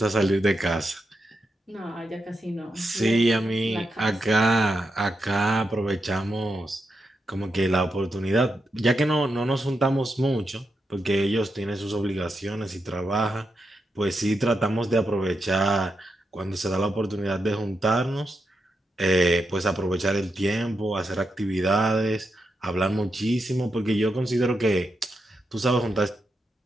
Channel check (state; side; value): normal; both; correlation 0.85